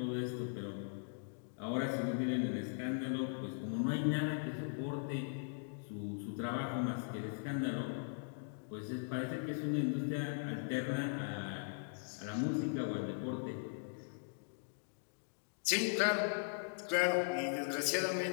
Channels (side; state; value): right; silent; digital silence